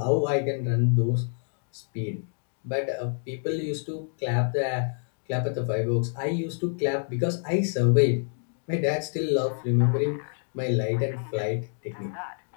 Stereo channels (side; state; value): right; silent; 60 dB below the other